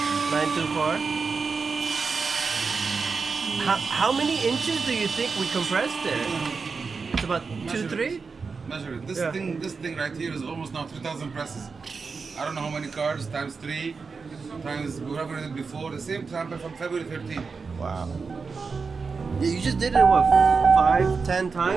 how many inches do you think we compressed it? It's about 2-3. Measure it. This thing right here is almost now 3,000 presses. I don't know how many cars times 3 times whatever it did before. The same time from February 13. Wow. Yeah, you just did it what 5-10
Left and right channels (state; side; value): quieter; left; 4.9 dB